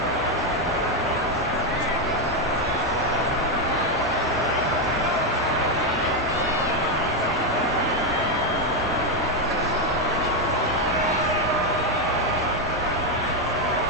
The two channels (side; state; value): both; normal; correlation 0.05